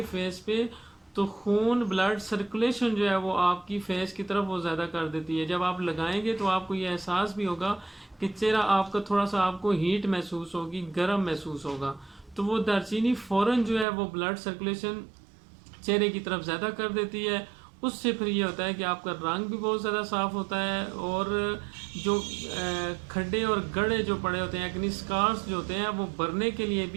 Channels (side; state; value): left; drops out; at 13.9 s